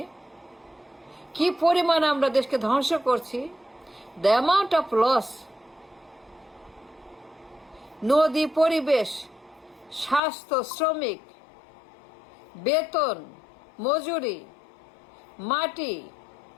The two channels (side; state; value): right; drops out; at 10.2 s